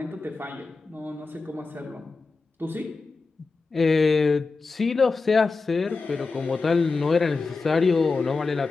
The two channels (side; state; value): right; quieter; 4.1 dB